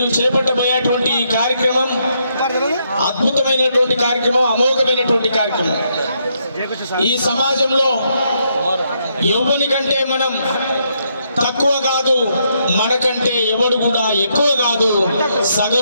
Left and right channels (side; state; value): both; inverted; correlation -0.76